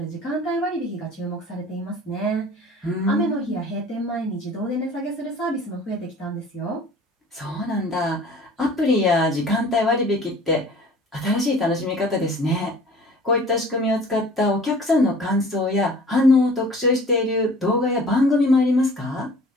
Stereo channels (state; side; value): normal; both; correlation 0.47